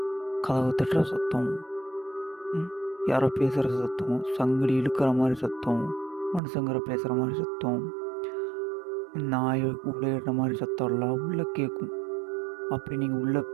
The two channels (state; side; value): drops out; left; at 6.4 s